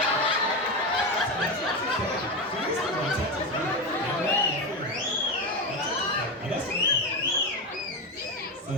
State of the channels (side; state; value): both; normal; correlation 0.16